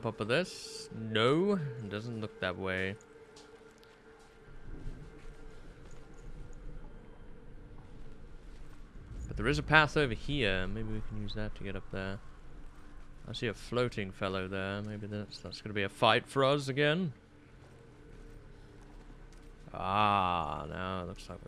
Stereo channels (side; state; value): both; identical; correlation 1.00